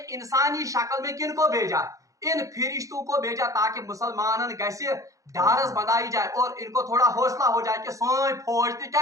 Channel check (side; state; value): left; late; 0.16 ms